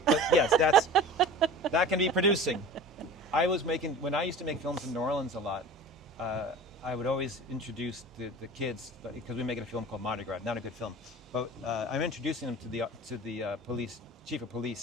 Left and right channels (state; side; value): normal; both; correlation 0.37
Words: But yes, that can be producing. When I used to make films in New Orleans a lot, I would always introduce the kids, because we make a film called Mardi Gras, not a good film, but I'm introducing them to the police, chief of